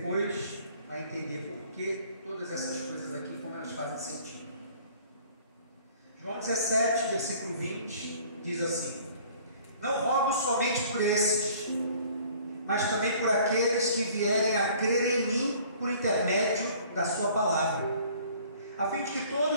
vai entender por que todas essas coisas aqui, como elas fazem sentido. João 17, versículo 20, diz assim: não rogo somente por esses, mas também por aqueles que vierem a crer em mim por intermédio da sua palavra, a fim de que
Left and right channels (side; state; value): both; inverted; correlation -0.53